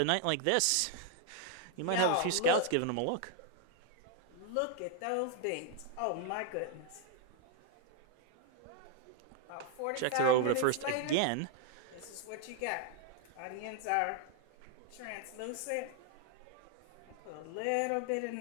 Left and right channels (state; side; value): different; both; correlation 0.00